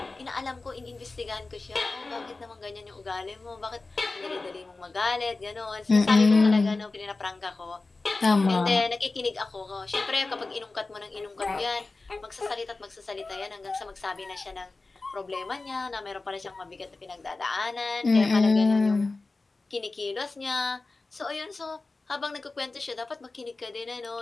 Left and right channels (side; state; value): right; quieter; 3.5 dB